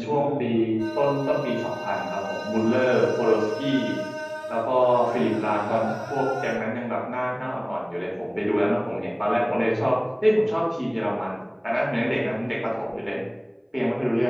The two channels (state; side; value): identical; both; correlation 1.00